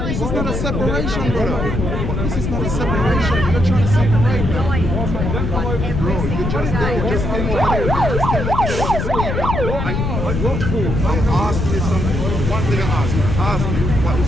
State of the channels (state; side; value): noise; left; rumble, 2 dB below the sound